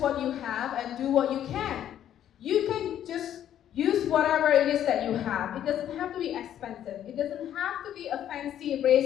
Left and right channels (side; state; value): right; quieter; 10.8 dB